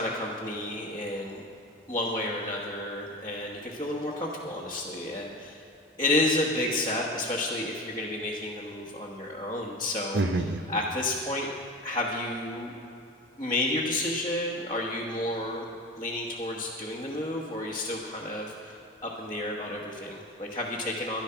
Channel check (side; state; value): both; normal; correlation 0.30